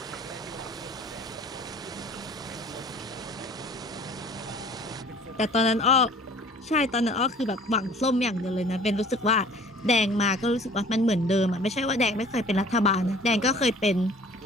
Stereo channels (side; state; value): both; normal; correlation 0.49